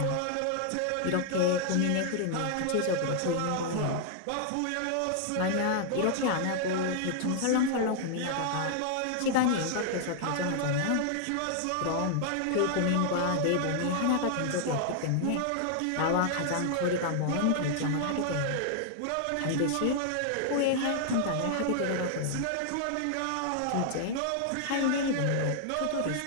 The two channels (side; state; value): both; different; correlation 0.00